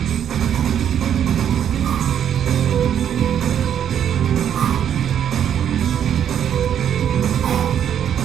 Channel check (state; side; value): quieter; left; 9.3 dB